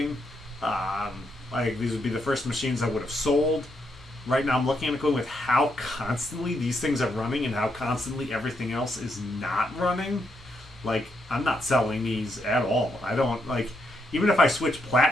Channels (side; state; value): both; normal; correlation 0.79